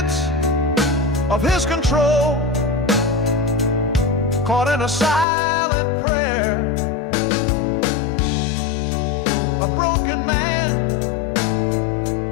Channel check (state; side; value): drops out; right; at 5.2 s